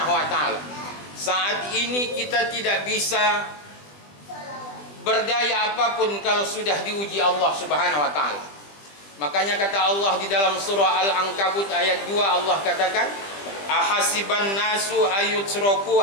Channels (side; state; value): right; late; 20 ms